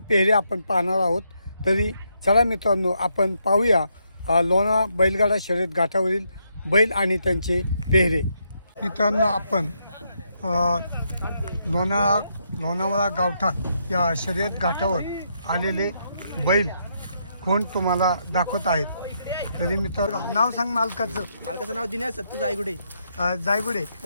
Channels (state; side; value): inverted; both; correlation -0.78